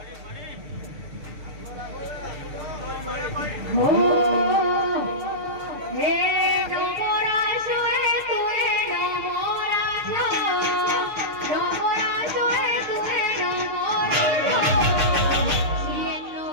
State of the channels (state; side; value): late; left; 6.6 ms